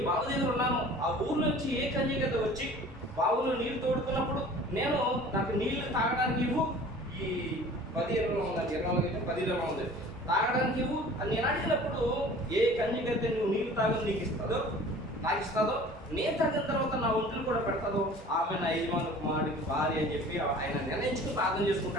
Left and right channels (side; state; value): both; normal; correlation 0.45